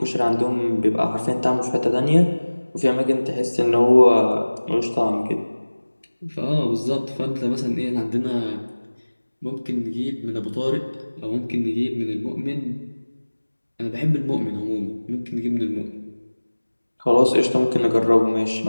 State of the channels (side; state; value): both; inverted; correlation -1.00